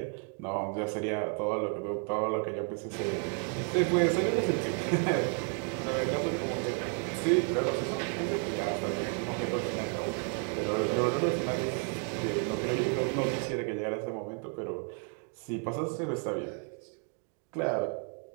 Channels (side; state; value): left; quieter; 39.4 dB